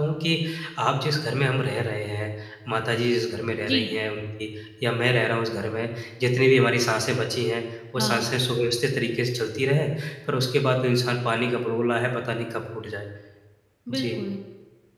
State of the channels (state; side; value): identical; both; correlation 1.00